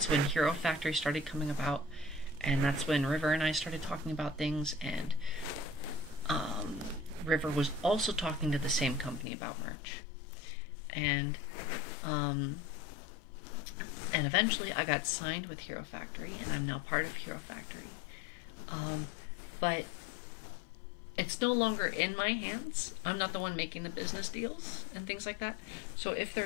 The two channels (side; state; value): right; drops out; at 9.2 s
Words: when Hero Factory started coming about, and that's when River and I started talking about things, and River was also talking to the same company about merch, and eventually I got signed with Hero Factory, and I'm now part of Hero Factory, but it's no longer in my hands. I'm not the one making the business deals and things like that. So if